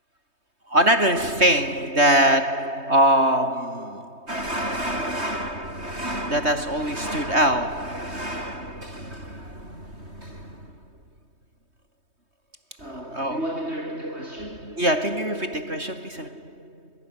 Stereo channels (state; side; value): late; left; 3.2 ms